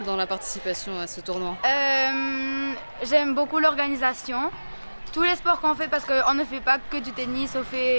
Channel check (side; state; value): both; inverted; correlation -1.00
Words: dans la participation à ce tournoi? J'aime beaucoup l'organisation, tous les sports qu'on fait parce qu'on ne fait pas que du tennis,